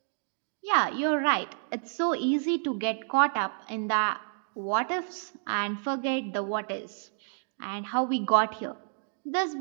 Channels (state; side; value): silent; left; digital silence